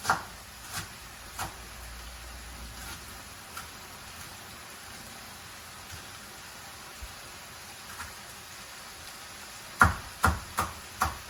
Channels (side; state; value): both; identical; correlation 1.00